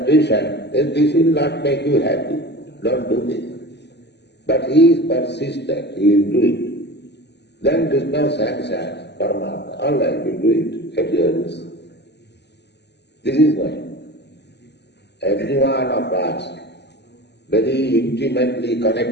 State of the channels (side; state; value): right; late; 0.50 ms